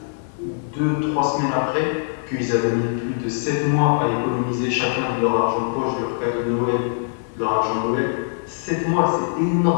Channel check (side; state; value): right; silent; 64 dB below the other